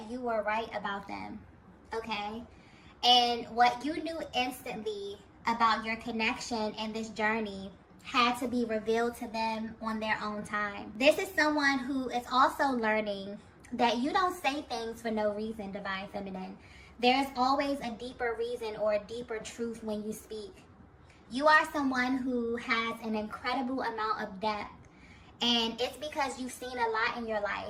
you were right about them, okay? And what you knew instantly about your connection and this journey had to be revealed to them on their own time. This is someone who is also learning that you don't say things for no reason, Divine Feminine. There's always a deeper reason or a deeper truth when you speak. You are someone who has an incredible amount of depth, and it's because you've seen a lot in your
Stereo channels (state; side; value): identical; both; correlation 1.00